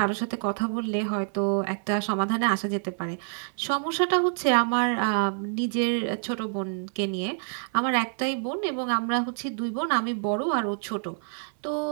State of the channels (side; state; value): left; silent; 60 dB below the other